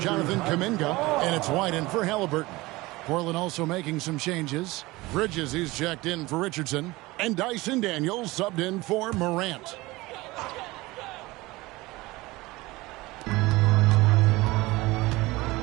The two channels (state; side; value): quieter; left; 20.8 dB